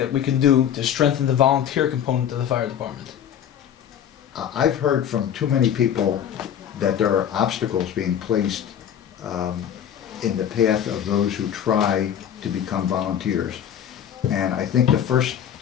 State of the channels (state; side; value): quieter; right; 9.4 dB